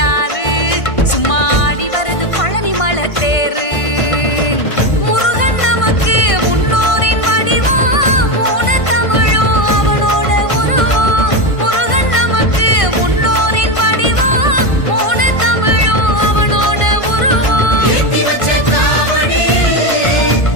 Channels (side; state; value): right; late; 1.5 ms